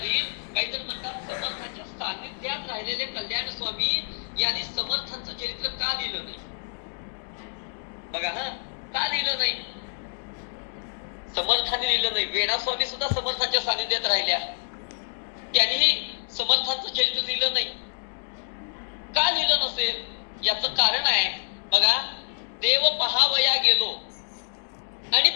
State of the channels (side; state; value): right; silent; digital silence